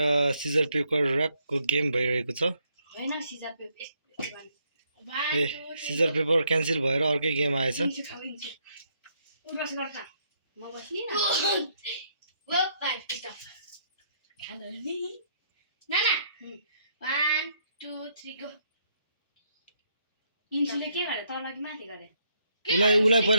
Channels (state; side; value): inverted; both; correlation -0.72